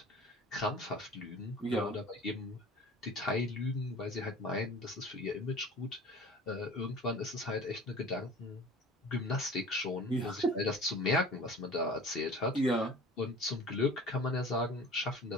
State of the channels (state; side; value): normal; both; correlation 0.43